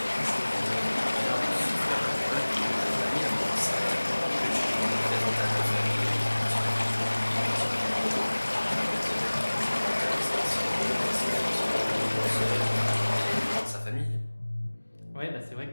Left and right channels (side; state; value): both; inverted; correlation -1.00